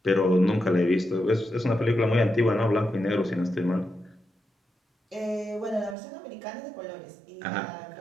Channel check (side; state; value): left; drops out; at 6.0 s